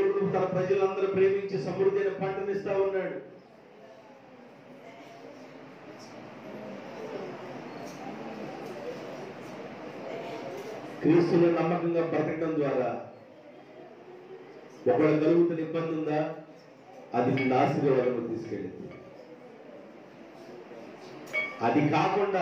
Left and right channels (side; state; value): both; identical; correlation 1.00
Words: తన ప్రజలందరూ ప్రేమించి సమృద్ధైన పంటనిస్తా ఉన్నాడు. క్రీస్తుని నమ్మకంగా బ్రతకడం ద్వారా ఒకవేళ కలుగుతున్న ఇబ్బంది ఉందా, అది నిన్ను ఆశీర్వాదంలో తీసుకెళ్ళింది. అది